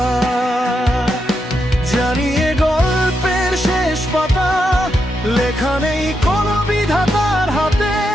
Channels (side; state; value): both; normal; correlation 0.83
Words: জানিয়ে গল্পের শেষ পাতা লেখা নেই কোনো বিধাতার হাতে,